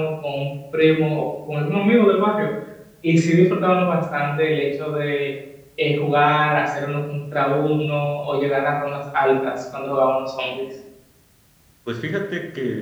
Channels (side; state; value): both; identical; correlation 1.00